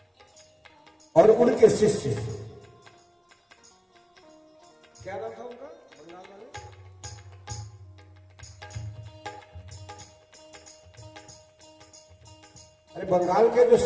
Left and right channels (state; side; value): identical; both; correlation 1.00